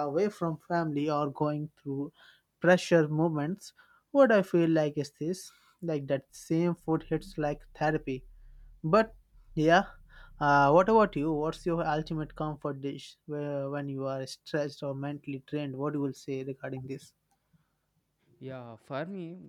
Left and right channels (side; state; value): both; identical; correlation 1.00